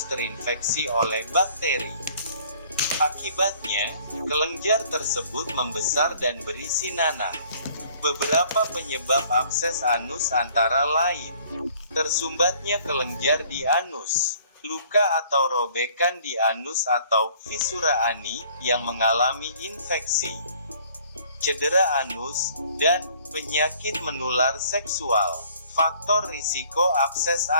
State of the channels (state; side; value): inverted; both; correlation -0.56